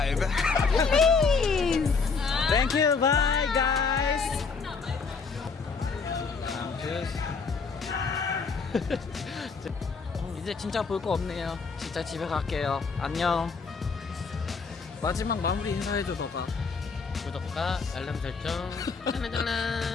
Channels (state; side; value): quieter; right; 4.9 dB